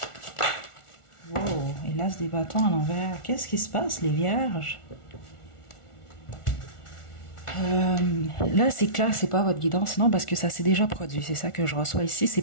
Wow, et l'as des bâtons à l'envers. Qu'est-ce qui se passe, les vierges? Là, c'est clair, c'est pas votre guidance, non, parce que ça s'est déjà produit. C'est ça que je reçois ici. C'est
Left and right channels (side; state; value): right; late; 1.4 ms